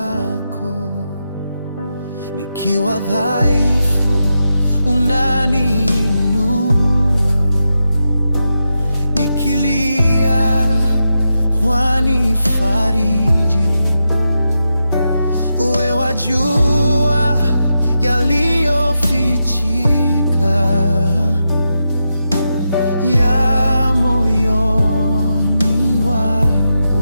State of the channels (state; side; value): inverted; both; correlation -0.87